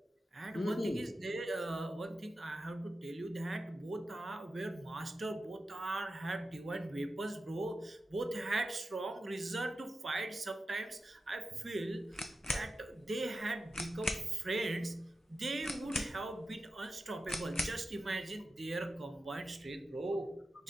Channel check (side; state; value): both; normal; correlation 0.91